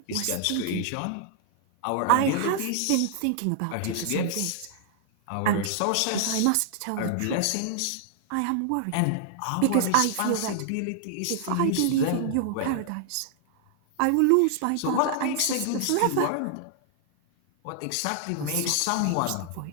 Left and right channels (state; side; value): different; both; correlation 0.00